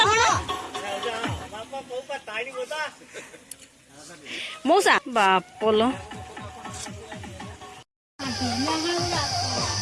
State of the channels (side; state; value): both; identical; correlation 1.00